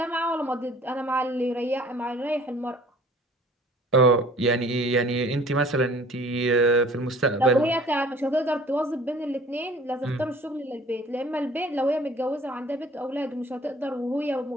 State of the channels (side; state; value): both; normal; correlation 0.51